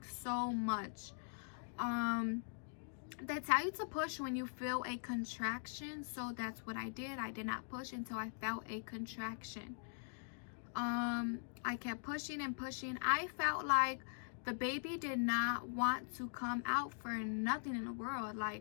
so much. They tell you to push when you feel a contraction, so that's what I did. I did not push until I felt a contraction. I kept pushing and pushing. I felt like the baby did not want to come out for nothing in the world.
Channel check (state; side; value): silent; right; digital silence